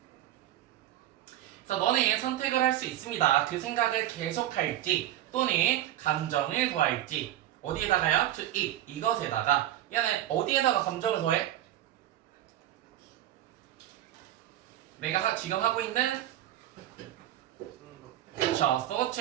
그래서 너네 선택을 할 수 있습니다. 그 생각을 계속할지 또는 감정을 더할지. 어디에다가요? to it, 이것에다가. 얘는 어디에다가 감정을 더해? 내가 지금 하고 있는 그렇죠,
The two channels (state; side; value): quieter; left; 13.2 dB